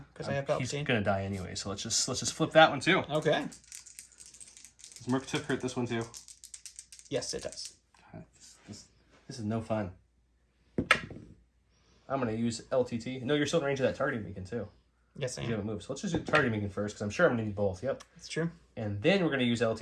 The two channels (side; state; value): both; identical; correlation 1.00